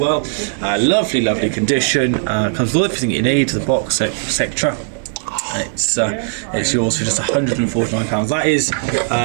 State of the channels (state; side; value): silent; left; digital silence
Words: Lovely, lovely condition. Comes with everything you need, the box, etc. It's yours for just £149. That is